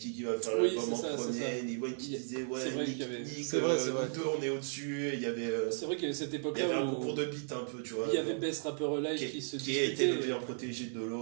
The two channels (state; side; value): silent; left; digital silence